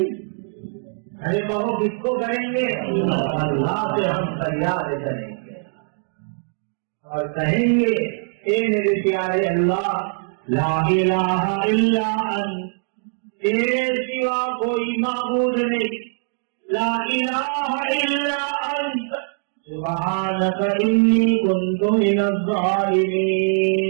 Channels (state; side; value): silent; left; digital silence